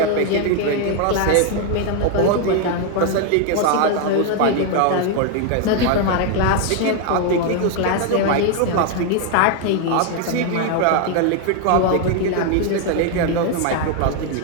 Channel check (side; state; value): both; different; correlation 0.00